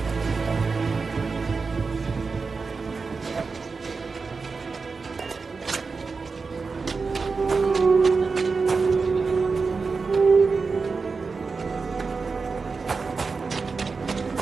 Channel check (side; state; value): left; quieter; 4.6 dB